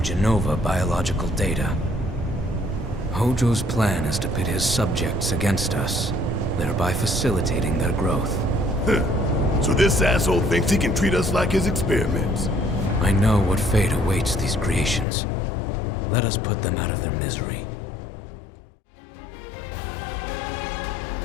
Genova biological data. Hojo's plan is to pit his subjects against us, thereby facilitating their growth. So this asshole thinks he can treat us like his experiments. I know what fate awaits these creations. Let us put them out of their misery.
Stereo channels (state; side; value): drops out; right; at 15.1 s